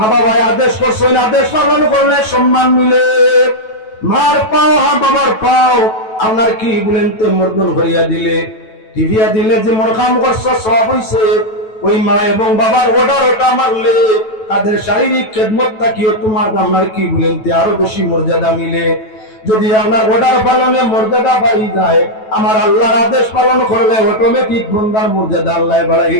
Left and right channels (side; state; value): right; late; 9.2 ms